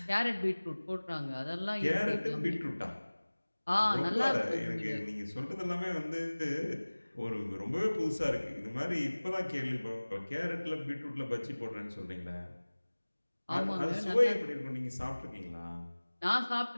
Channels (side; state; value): both; inverted; correlation -1.00